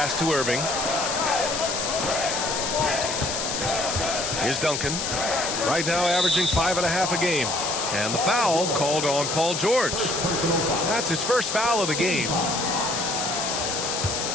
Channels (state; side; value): noise; left; hiss, 2 dB below the sound